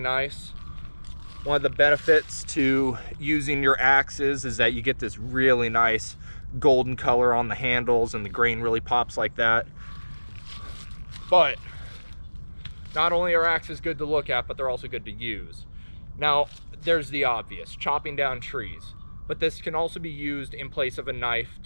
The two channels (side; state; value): both; inverted; correlation -1.00